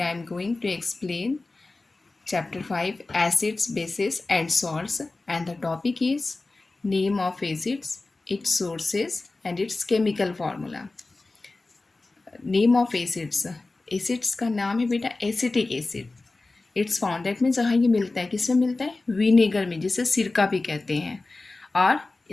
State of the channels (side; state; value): right; quieter; 3.3 dB